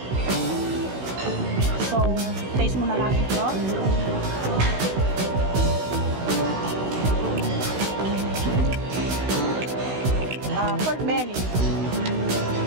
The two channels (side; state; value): left; late; 16 ms